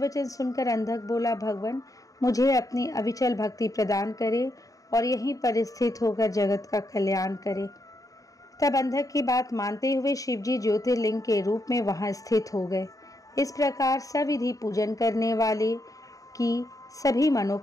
सुनकर अंधक बोला, भगवान मुझे अपनी अविचल भक्ति प्रदान करे और यहीं पर स्थित होकर जगत का कल्याण करे। तब अंधक की बात मानते हुए शिवजी ज्योतिर्लिंग के रूप में वहां स्थित हो गए। इस प्रकार सविधि पूजन करने वाले की सभी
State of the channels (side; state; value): right; late; 0.16 ms